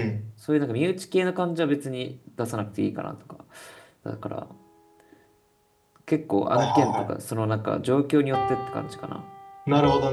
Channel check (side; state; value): both; identical; correlation 1.00